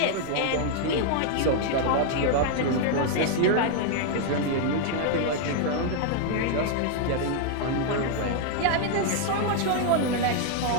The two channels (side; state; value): both; different; correlation 0.00